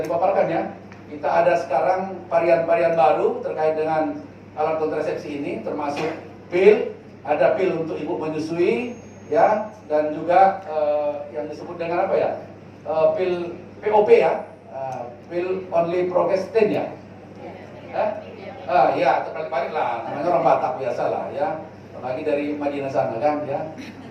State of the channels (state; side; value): identical; both; correlation 1.00